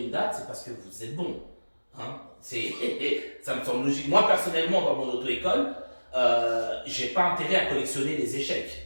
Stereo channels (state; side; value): inverted; both; correlation -1.00